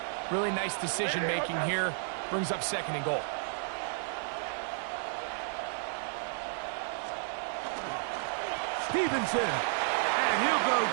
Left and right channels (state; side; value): silent; left; 56 dB below the other